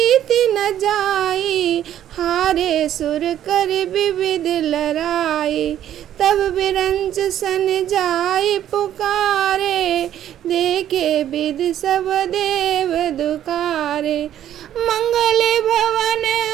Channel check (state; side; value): quieter; left; 11.2 dB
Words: न जाई, हारे सुर कर विविध लड़ाई। तब बिरंच सन जाई पुकारे, देखे विध सब देव दुखारे। मंगल भवन